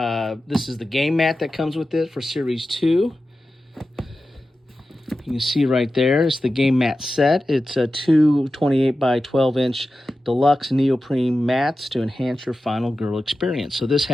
is the game mat that comes with it for Series 2. You can see right there, it's the game mat set. It's a 2 28 by 12 inch deluxe neoprene mats to enhance your Final Girl experience. So this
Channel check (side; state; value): both; normal; correlation 0.93